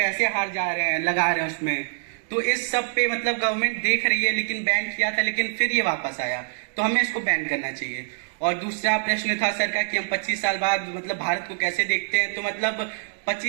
हार जा रहे हैं, लगा रहे हैं उसमें। तो इस सब पे मतलब गवर्नमेंट देख रही है, लेकिन बैन किया था लेकिन फिर ये वापस आया, तो हमें इसको बैन करना चाहिए। और दूसरा प्रश्न था सर का कि हम 25 साल बाद मतलब भारत को कैसे देखते हैं, तो मतलब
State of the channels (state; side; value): silent; left; digital silence